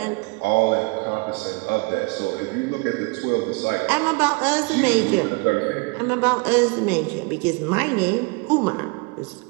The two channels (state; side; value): quieter; left; 29.4 dB